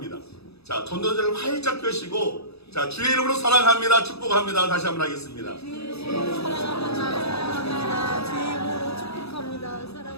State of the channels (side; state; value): right; late; 0.78 ms